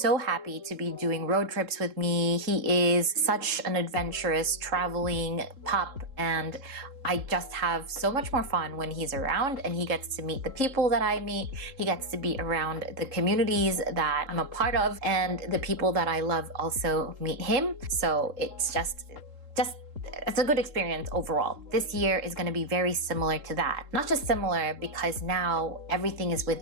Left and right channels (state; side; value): late; left; 3.7 ms